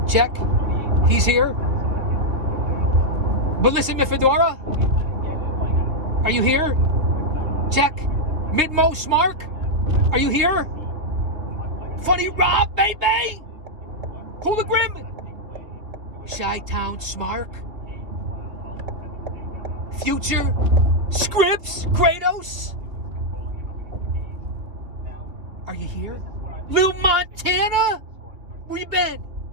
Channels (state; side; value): late; left; 3.0 ms